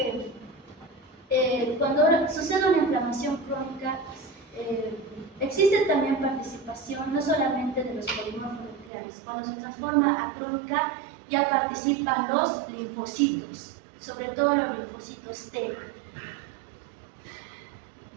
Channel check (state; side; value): drops out; left; at 8.9 s